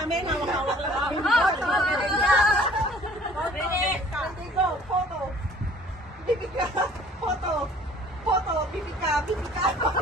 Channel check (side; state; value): both; normal; correlation 0.53